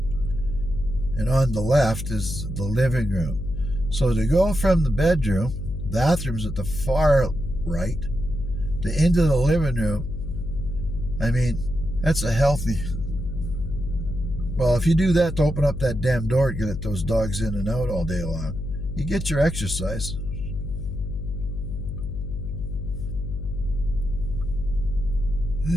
And on the left is the living room. So to go from the bedroom, bathroom's at the far right, to into the living room, I mean, That's a healthy. Well, if you do that to open up that damn door to get those dogs in and out all day long, you get your exercise.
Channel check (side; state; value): left; noise; hum, 5 dB below the sound